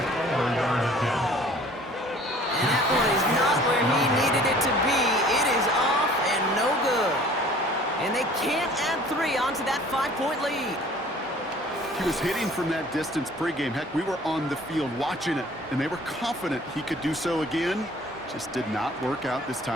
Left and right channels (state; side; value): normal; both; correlation 0.51